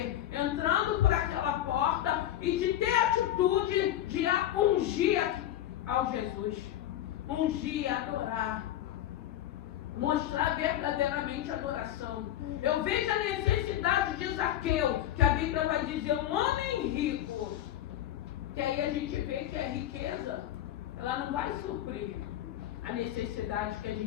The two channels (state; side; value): quieter; right; 12.3 dB